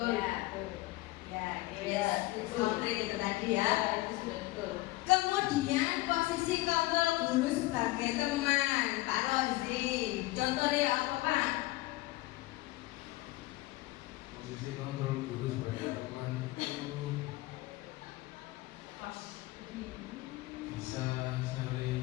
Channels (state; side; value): quieter; right; 19.3 dB